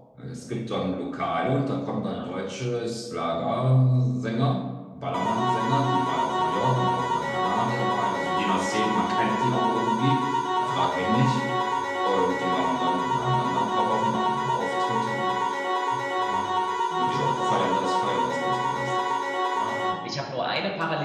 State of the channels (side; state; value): both; identical; correlation 1.00